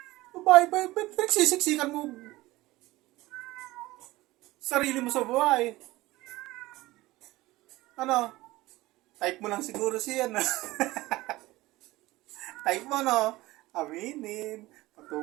Babae, nagsisiksikan mo sarili mo sa buhay. Ano? Type mo lang siguro siya na. Type mo, no? Aminin.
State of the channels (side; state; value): left; quieter; 18.8 dB